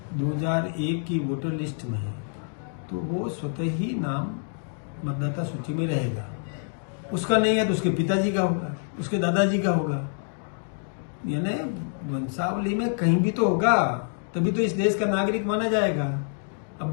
2001 की वोटर लिस्ट में है तो वो स्वतः ही नाम मतदाता सूची में रहेगा। उसका नहीं है तो उसके पिताजी का होगा, उसके दादाजी का होगा। यानी वंशावली में कहीं भी तो होगा, तभी तो इस देश का नागरिक माना जाएगा। अब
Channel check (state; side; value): silent; right; 60 dB below the other